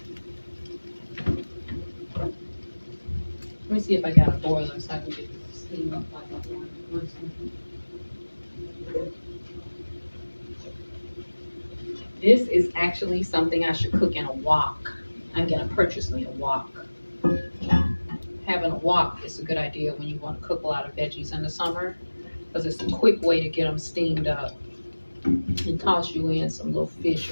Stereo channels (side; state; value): both; inverted; correlation -1.00